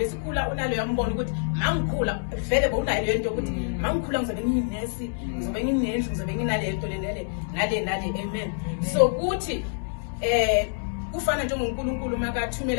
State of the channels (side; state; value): right; silent; 61 dB below the other